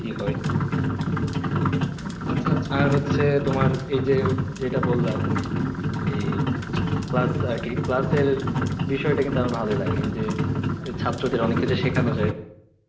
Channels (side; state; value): both; identical; correlation 1.00